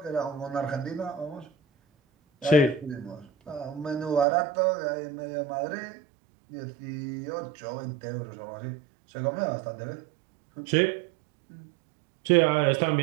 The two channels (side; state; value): left; drops out; at 4.2 s